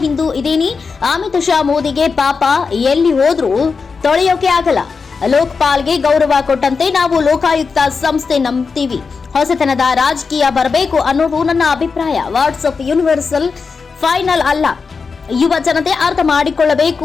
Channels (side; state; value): right; quieter; 5.0 dB